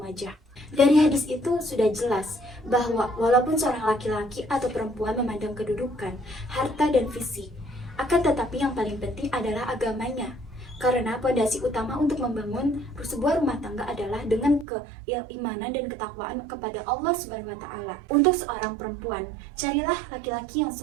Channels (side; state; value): left; drops out; at 14.7 s